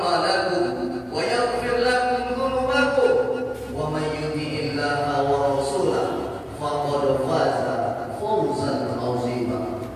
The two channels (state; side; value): identical; both; correlation 1.00